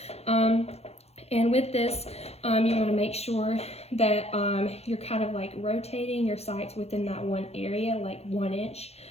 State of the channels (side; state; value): right; late; 0.30 ms